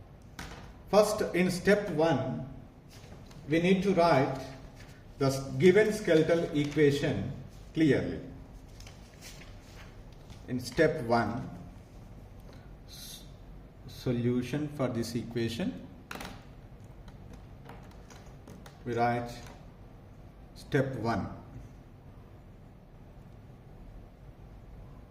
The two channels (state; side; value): identical; both; correlation 1.00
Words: First, in step 1, we need to write the given skeletal equation clearly. In step 1, solution for this equation, we write step 1.